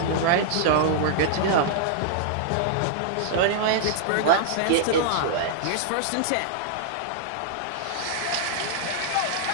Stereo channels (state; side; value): different; both; correlation -0.01